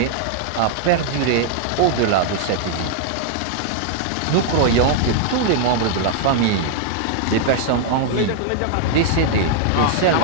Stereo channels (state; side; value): different; both; correlation 0.00